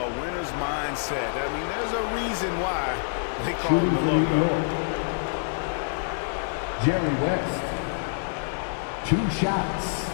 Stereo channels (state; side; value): silent; right; digital silence